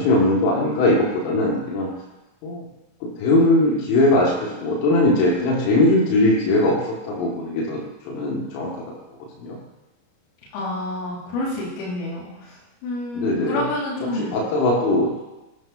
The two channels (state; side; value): late; right; 33 ms